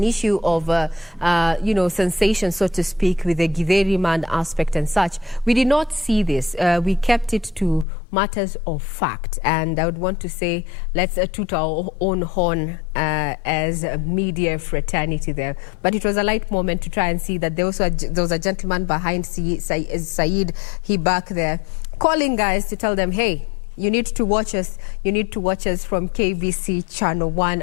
issue of, sensation, so to speak, with the Githeri man aspect and such. We did not see this. We kept it to matters of fact. And I would want to say, let's toot our own horn as a media fraternity there. But it was a light moment to try and see that there was a gentleman behind Said Hibak there, calling guys to tell them, hey, you need to watch us. You need to watch us from KBC Channel 1.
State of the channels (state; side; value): drops out; right; at 7.9 s